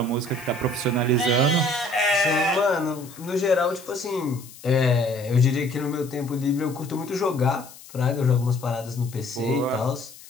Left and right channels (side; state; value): left; noise; hiss, 19 dB below the sound